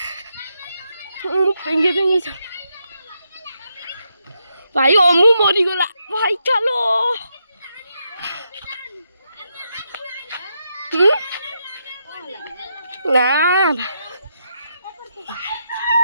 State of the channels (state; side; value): inverted; both; correlation -0.81